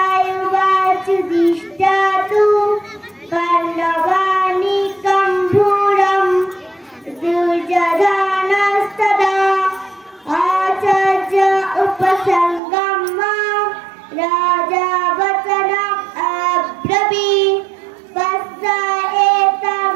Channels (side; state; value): left; drops out; at 12.6 s